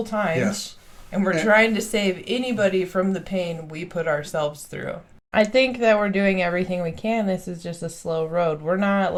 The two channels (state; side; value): identical; both; correlation 1.00